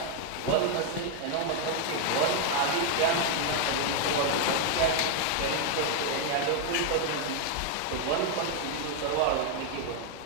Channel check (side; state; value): both; different; correlation 0.00